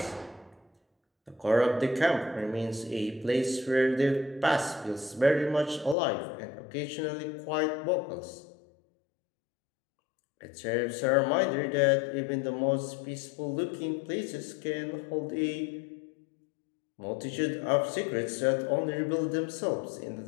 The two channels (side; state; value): right; drops out; at 6.0 s